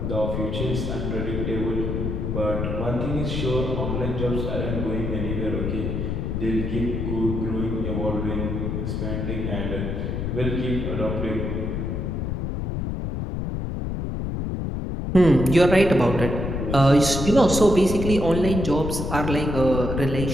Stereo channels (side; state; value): left; noise; rumble, 2 dB below the sound